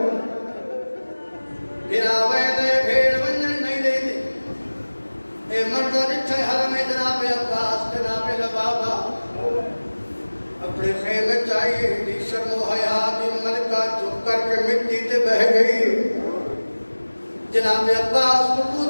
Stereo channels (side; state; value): both; inverted; correlation -1.00